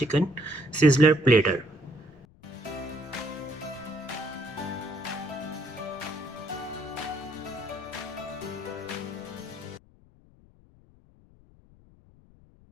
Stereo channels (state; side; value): noise; left; rumble, 26 dB below the sound